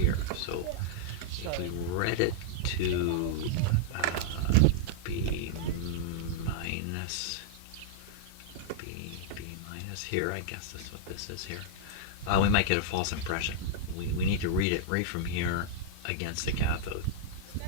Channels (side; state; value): both; different; correlation -0.02